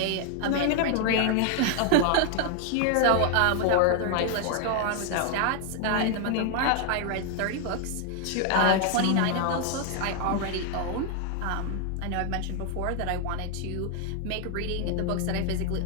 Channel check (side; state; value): both; different; correlation 0.00